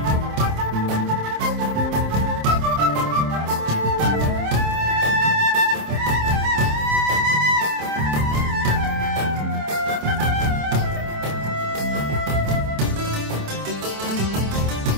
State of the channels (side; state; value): left; late; 27 ms